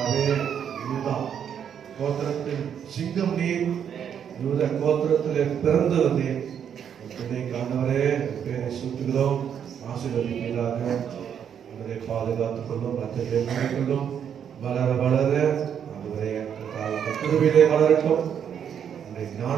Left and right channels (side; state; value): left; quieter; 8.4 dB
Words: சிங்கம் நீர், யூத கோத்திரத்திலே பிறந்தவர் நீர். பிள்ளைக்கு ஆண்டவரே பேரை சூட்டுகிறோம், ஆசீர்வதிப்பீராக. அவரை பாதுகாத்துக் கொள்ளும், மற்றவர்களை மூடிக்கொள்ளும். வளர வளர ஆண்டவரே கிருபையிலே வளரட்டும்,